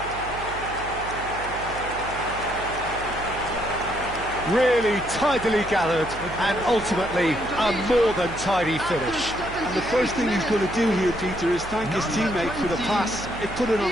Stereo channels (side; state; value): right; noise; hum, 12 dB below the sound